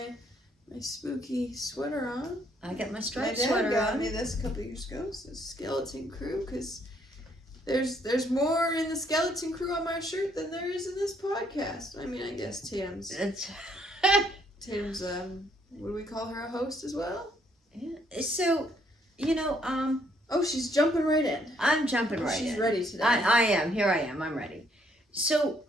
spooky sweater on. I got my My striped dad sweater got on. me this a couple years ago. It's a skeleton crew because there's more in the skeleton crew on my shirt than there is in this podcast. I mean, I guess Tatum's what do we call her, a host as well? Yeah. So, Oh, she's jumping right in. I'm jumping right She's in. ready today. I am. Here I am. I'm ready. So,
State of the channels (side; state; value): both; normal; correlation 0.68